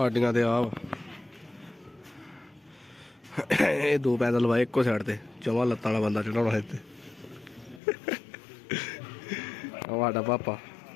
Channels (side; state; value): right; drops out; at 7.8 s